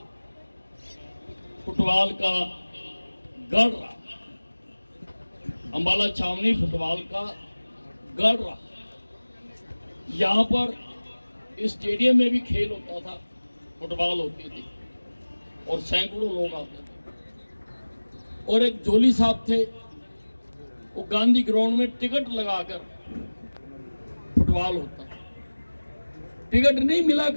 फुटबॉल का गढ़ रहा, अम्बाला छावनी फुटबॉल का गढ़ रहा। यहाँ पर स्टेडियम में भी खेल होता था, फुटबॉल होती थी और सैकड़ों लोग आते थे। और एक जोली साहब थे, वो गांधी ग्राउंड में टिकट लगाकर फुटबॉल होता, टिकट नहीं मिला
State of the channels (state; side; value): inverted; both; correlation -1.00